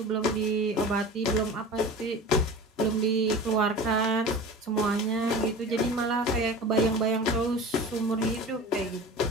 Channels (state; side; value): normal; both; correlation 0.36